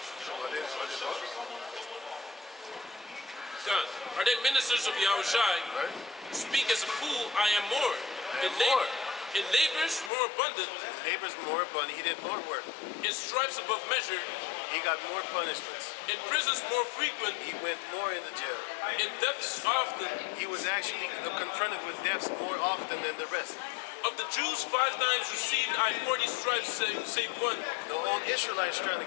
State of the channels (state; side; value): drops out; right; at 10.1 s